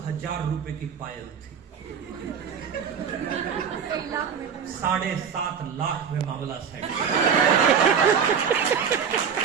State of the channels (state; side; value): quieter; left; 7.0 dB